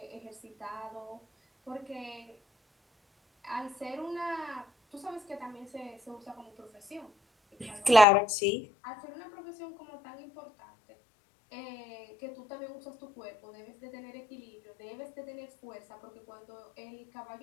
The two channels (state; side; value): drops out; right; at 8.1 s